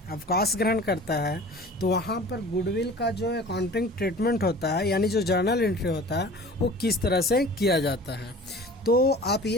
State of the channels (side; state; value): both; normal; correlation 0.42